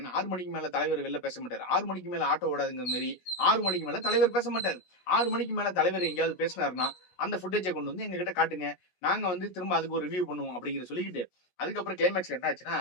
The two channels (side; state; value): right; late; 17 ms